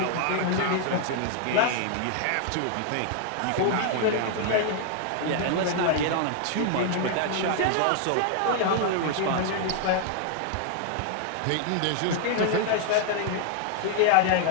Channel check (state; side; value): different; both; correlation 0.00